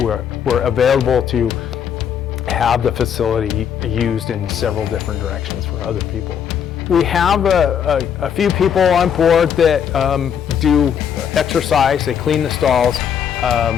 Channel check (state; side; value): quieter; right; 8.2 dB